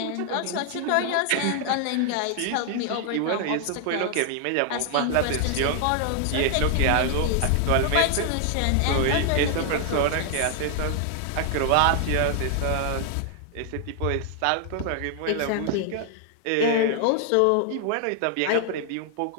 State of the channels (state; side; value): different; both; correlation 0.00